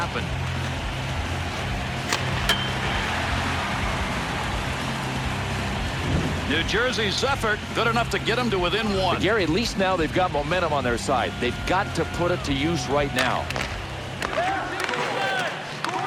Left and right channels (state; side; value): identical; both; correlation 1.00